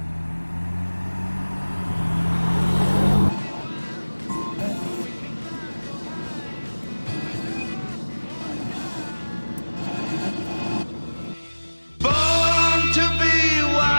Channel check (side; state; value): both; inverted; correlation -1.00